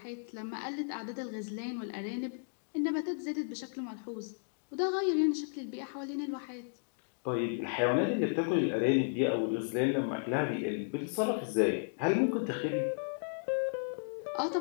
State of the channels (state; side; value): silent; right; digital silence